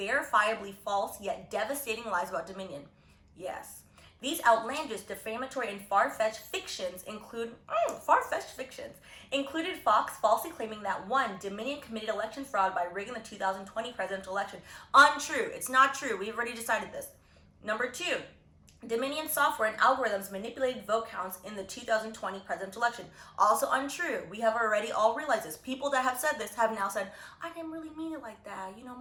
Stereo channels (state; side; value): identical; both; correlation 1.00